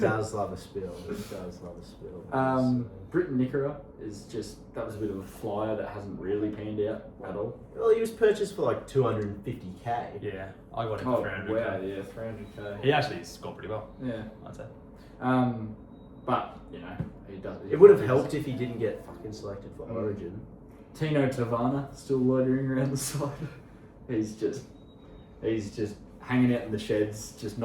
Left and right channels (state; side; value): identical; both; correlation 1.00